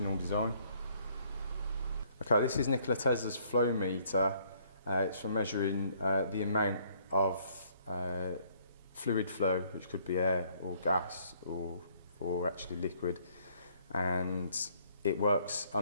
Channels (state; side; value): inverted; both; correlation -0.64